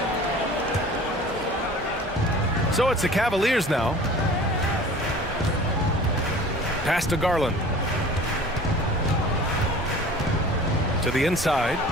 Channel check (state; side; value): normal; both; correlation 0.44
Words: So it's the Cavaliers now. Pass to Garland. To the inside.